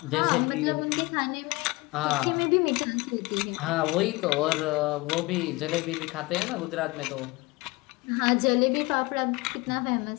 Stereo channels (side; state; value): right; quieter; 23.3 dB